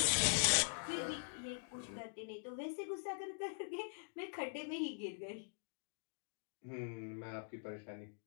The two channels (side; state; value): right; silent; digital silence